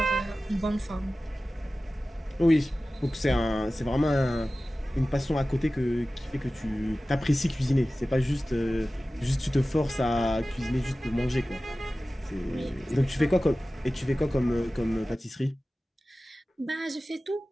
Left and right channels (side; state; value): both; normal; correlation 0.96